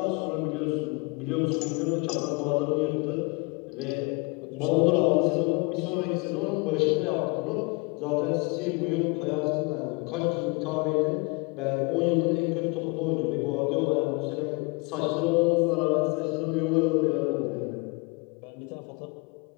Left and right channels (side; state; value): right; quieter; 29.1 dB